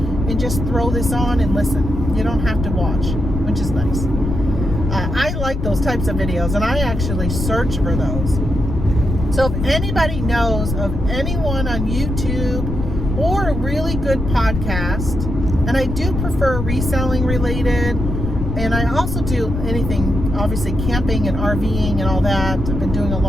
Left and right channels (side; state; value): left; noise; rumble, 4 dB below the sound